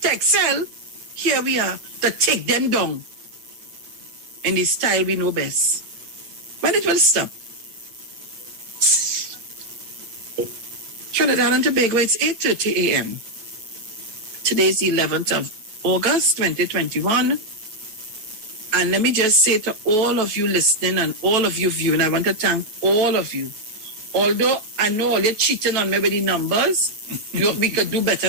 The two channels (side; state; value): left; late; 9.3 ms